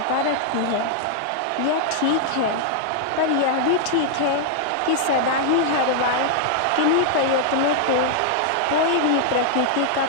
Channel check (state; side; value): different; both; correlation -0.01